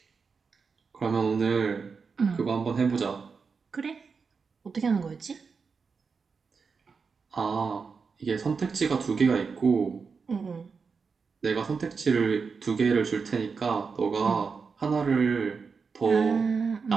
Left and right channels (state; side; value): quieter; left; 5.3 dB